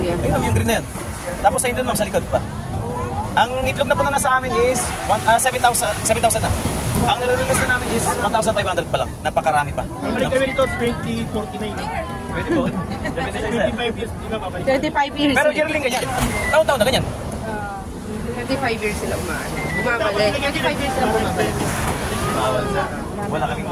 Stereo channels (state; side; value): identical; both; correlation 1.00